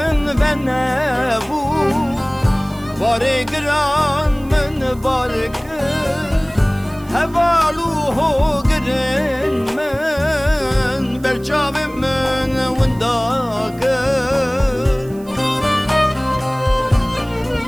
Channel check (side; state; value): right; noise; hiss, 25 dB below the sound